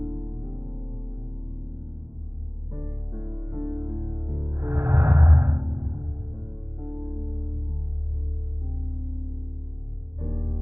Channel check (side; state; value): left; late; 0.12 ms